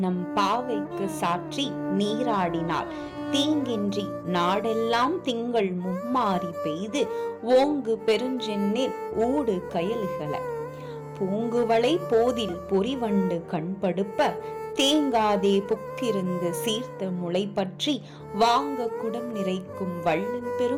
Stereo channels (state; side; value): identical; both; correlation 1.00